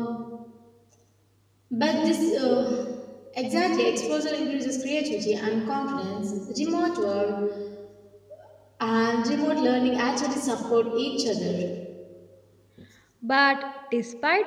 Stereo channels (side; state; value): both; identical; correlation 1.00